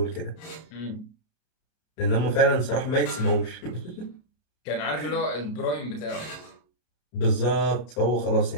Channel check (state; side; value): late; right; 33 ms